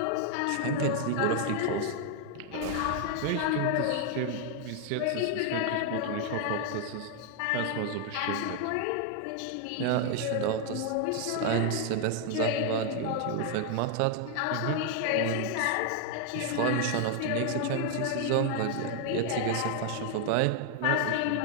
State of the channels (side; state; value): both; different; correlation 0.00